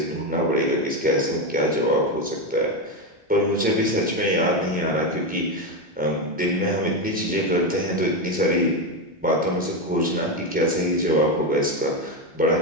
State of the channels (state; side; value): normal; both; correlation 0.12